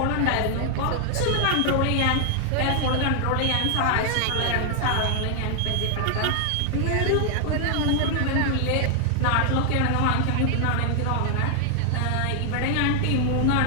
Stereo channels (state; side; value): different; both; correlation 0.00